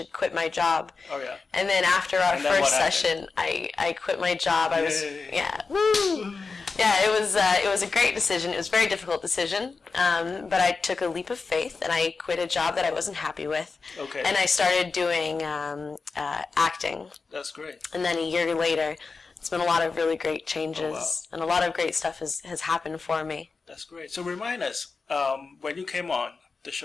quit my job. Oh yeah. And then after our first session, I quit my job. I was woo. Yeah, it was a great decision. It was a very difficult decision, but I took a leap of faith and I quit a job that I wasn't happy with. Okay. And I started doing acting. That's great. And then a year later, it's been a lot of really great changes, and a lot of great stuff has happened for me. That's great. So remind us, when you came on the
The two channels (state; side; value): quieter; right; 4.5 dB